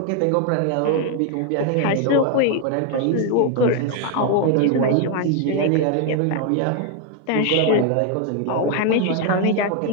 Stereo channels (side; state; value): both; different; correlation 0.01